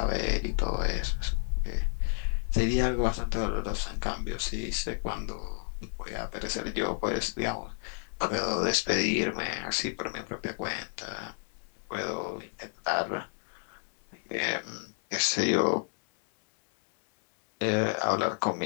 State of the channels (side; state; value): right; silent; 57 dB below the other